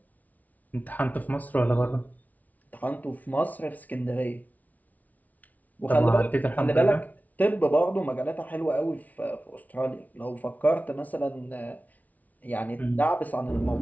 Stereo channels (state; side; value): late; right; 0.074 ms